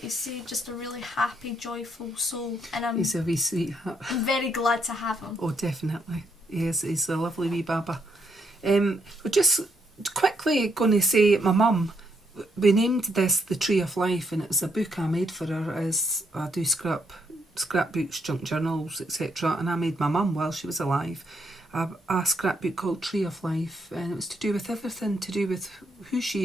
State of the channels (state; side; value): normal; both; correlation 0.76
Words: you say, just a really happy, joyful soul. And He's a wee sweetheart. I'm very glad to have him. Oh, definitely. Yes, he's a lovely wee baba. We're just quickly going to say, my mum, we named this The Tree of Life, and it was a book I made for her, as I do scrapbooks, junk journals, etc. And I made my mum while she was alive a scrapbook called Tree of Life, and it was to do with everything, to do with who